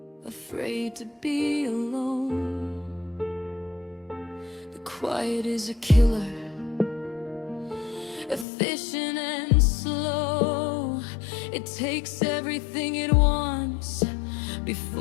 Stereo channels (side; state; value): right; drops out; at 8.5 s